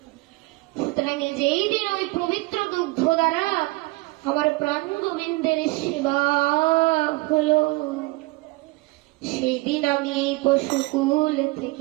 সুতরাং যেই দিন ওই পবিত্র দুগ্ধ দ্বারা আমার প্রাণ গোবিন্দের সেবা হলো, সেই দিন আমি এই পশুকুল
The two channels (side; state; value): left; quieter; 22.9 dB